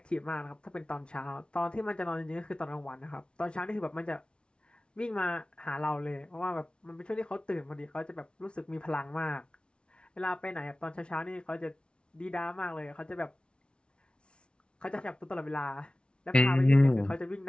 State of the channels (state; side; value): late; right; 0.057 ms